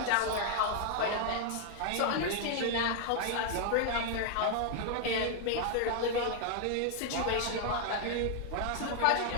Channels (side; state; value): both; different; correlation 0.00